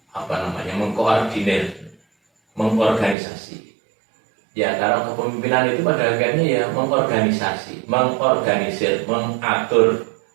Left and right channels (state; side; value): drops out; left; at 3.2 s